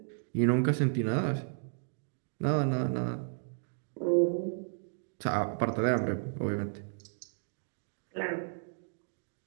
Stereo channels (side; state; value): left; silent; digital silence